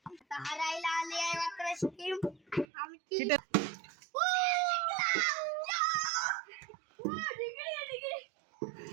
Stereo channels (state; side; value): drops out; left; at 2.7 s